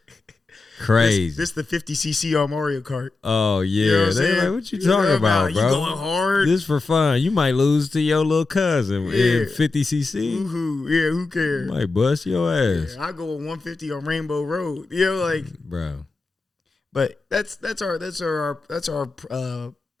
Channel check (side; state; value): right; quieter; 3.6 dB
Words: Crazy. This the 50cc on Mario Kart. Oh, yeah. You know what I'm They're saying? like, what you talking about, bro? You going hard. This for fun. You might lose to your little cousin in 50cc. Woohoo. Yeah, who cares? You might bust your ass. Yeah, I go with 150 on Rainbow Road. You know, like, bro. But that's our